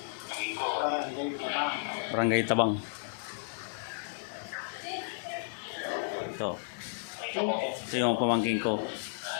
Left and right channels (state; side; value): silent; right; digital silence